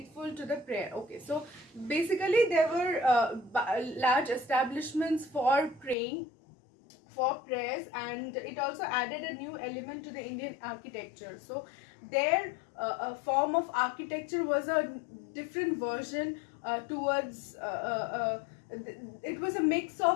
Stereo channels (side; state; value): right; drops out; at 6.0 s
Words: to the prayer. Okay, so basically there were large establishments for praying, for prayers, and it also added a new element to the Indian architecture. So their form of architecture was a different version towards it was a mix